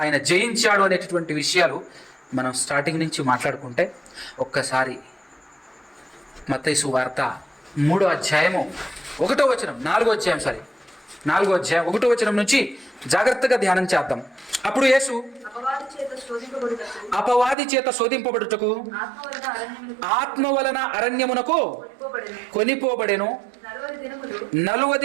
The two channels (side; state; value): left; drops out; at 17.6 s